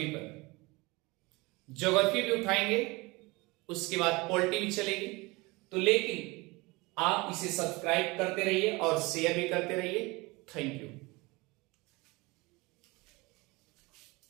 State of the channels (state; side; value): quieter; left; 24.0 dB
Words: पर। ज्योग्राफी भी उठाएंगे, उसके बाद पॉलिटी भी चलेगी। तो लेकिन आप इसे सब्सक्राइब करते रहिए और शेयर भी करते रहिए। Thank you.